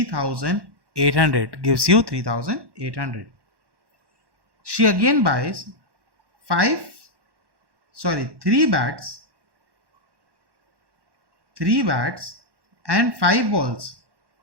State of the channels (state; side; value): late; left; 1.1 ms